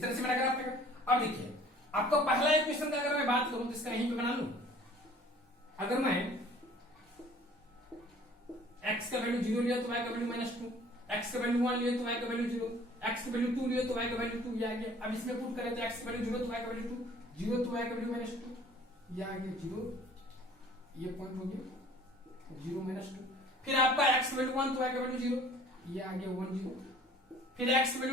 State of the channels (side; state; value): both; normal; correlation 0.51